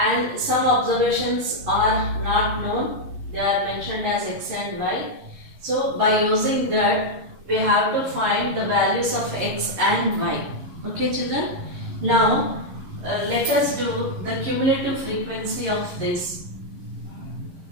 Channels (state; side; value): late; left; 11 ms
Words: and some observations are not known. They are mentioned as x and y. So by using that, we have to find the values of x and y. Okay children? Now let us do the cumulative frequency of this.